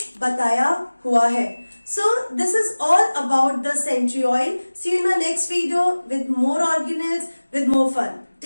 बताया हुआ है. So this is all about the centriole. See you in the next video with more organelles, with more fun.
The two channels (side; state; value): both; inverted; correlation -1.00